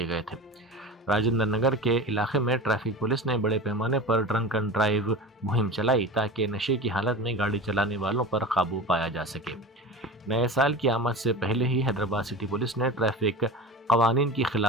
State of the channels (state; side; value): normal; both; correlation 0.31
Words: گئے تھے۔ راجندر نگر کے علاقے میں ٹریفک پولیس نے بڑے پیمانے پر ڈرنک اینڈ ڈرائیو مہم چلائی تاکہ نشے کی حالت میں گاڑی چلانے والوں پر قابو پایا جا سکے۔ نئے سال کی آمد سے پہلے ہی حیدرآباد سٹی پولیس نے ٹریفک قوانین کی